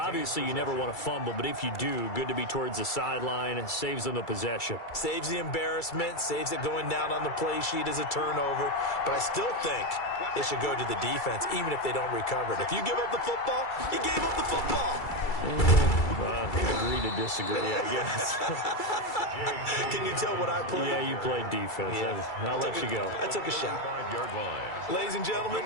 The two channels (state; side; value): late; right; 2.3 ms